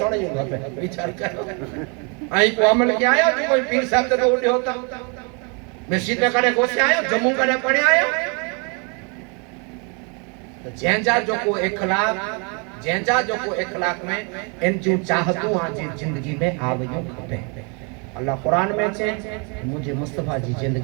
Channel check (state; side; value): quieter; left; 34.7 dB